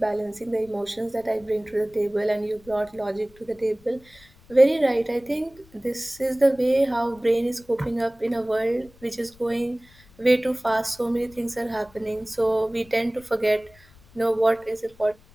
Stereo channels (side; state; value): left; noise; rumble, 27 dB below the sound